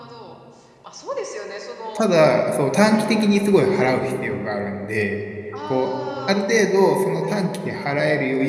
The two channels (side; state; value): both; identical; correlation 1.00